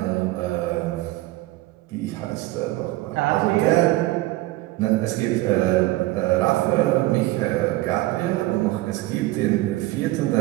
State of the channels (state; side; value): quieter; left; 18.4 dB